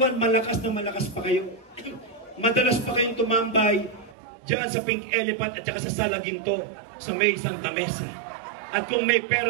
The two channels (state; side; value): drops out; left; at 4.2 s